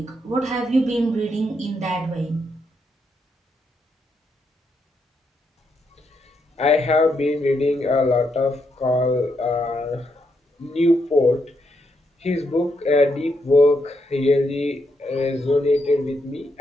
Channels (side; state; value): both; normal; correlation 0.80